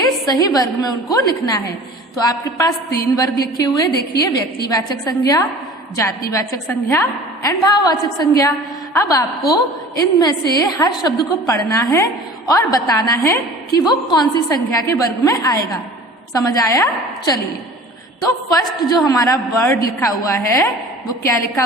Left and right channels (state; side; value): normal; both; correlation 0.42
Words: सही वर्ग में उनको लिखना है। तो आपके पास 3 वर्ग लिखे हुए, देखिए। व्यक्तिवाचक संज्ञा, जातिवाचक संज्ञा एंड भाववाचक संज्ञा। अब आपको इनमें से हर शब्द को पढ़ना है और बताना है कि वो कौन सी संज्ञा के वर्ग में आएगा। समझ आया? चलिए, तो फर्स्ट जो हमारा वर्ड लिखा हुआ है, वो क्या लिखा